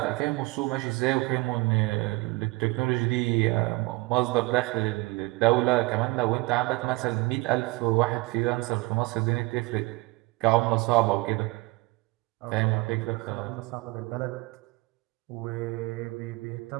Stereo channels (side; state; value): left; quieter; 23.3 dB